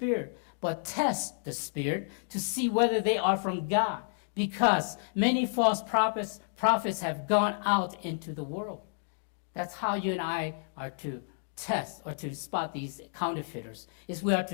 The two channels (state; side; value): silent; right; digital silence